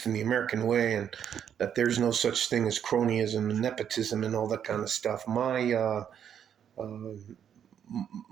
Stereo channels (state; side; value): quieter; left; 8.8 dB